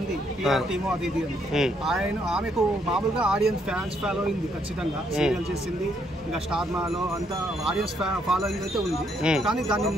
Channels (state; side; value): normal; both; correlation 0.72